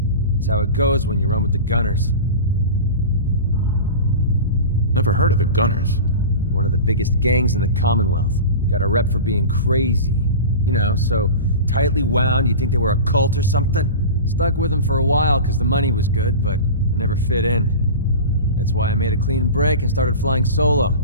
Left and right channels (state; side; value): inverted; both; correlation -0.31